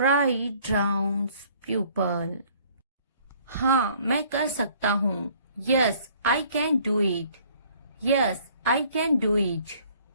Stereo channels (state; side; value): inverted; both; correlation -0.58